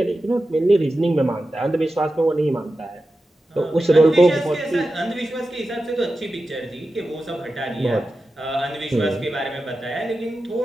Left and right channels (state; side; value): normal; both; correlation 0.92